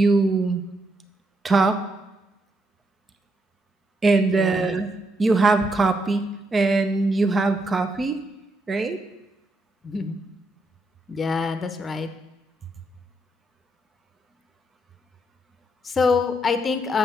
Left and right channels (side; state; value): both; normal; correlation 0.78